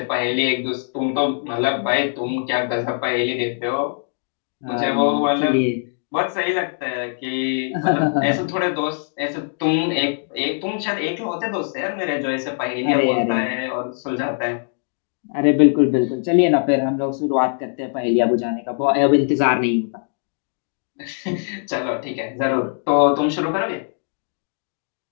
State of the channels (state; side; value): silent; right; digital silence